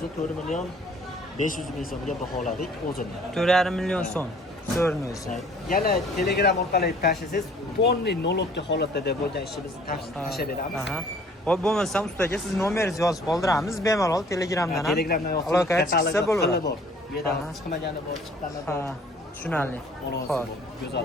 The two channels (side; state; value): both; normal; correlation 0.55